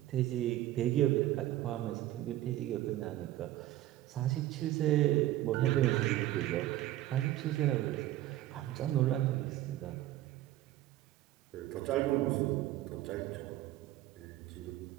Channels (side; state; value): left; quieter; 14.7 dB